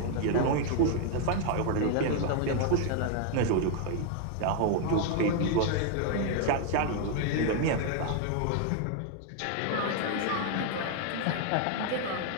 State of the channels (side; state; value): both; different; correlation 0.00